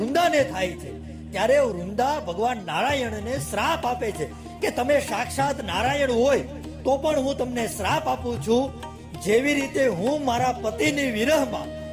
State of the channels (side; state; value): both; identical; correlation 1.00